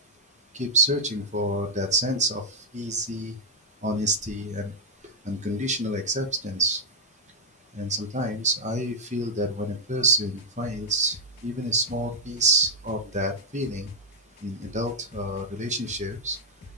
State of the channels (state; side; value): normal; both; correlation -0.02